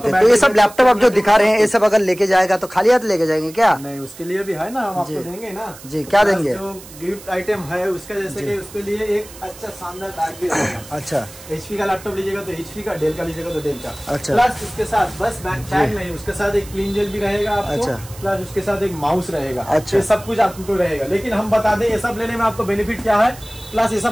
है। तो ये सब लैपटॉप आप जो दिखा रहे हैं ये सब अगर लेके जाएगा तो खाली हाथ लेके जाएंगे क्या? नहीं, उसके लिए भी है ना, हम आपको देंगे ना जी। क्या देंगे? जो गिफ्ट आइटम है उसका, जैसे कि उसके लिए एक अच्छा शानदार बैग भी रहेगा। अच्छा, HP का लैपटॉप लीजिएगा तो HP का, डेल का लीजिएगा तो डेल का। अच्छा, प्लस उसके साथ बस बैग नहीं, उसके साथ एक क्लीन जेल भी रहेगा आपको। अच्छा, प्लस उसके साथ एक माउस रहेगा। अच्छा, ये सब कुछ आपको रहेगा। लेकिन हम बता दें ये सब लेने में आपको बेनिफिट क्या है, प्लस ये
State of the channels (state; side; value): noise; right; hiss, 18 dB below the sound